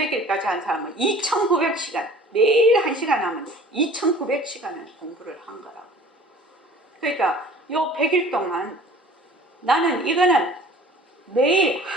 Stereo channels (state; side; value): normal; both; correlation 0.47